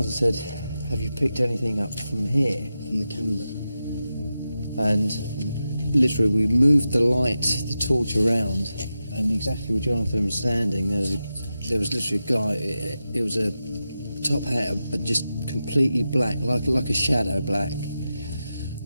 said, have you picked anything up from here? From the camera. And literally we moved the light, the torch around, and exactly where Jonathan was standing, there was literally a guy, it was a top hat, but just completely black, like a shadow black.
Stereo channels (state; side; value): inverted; both; correlation -0.90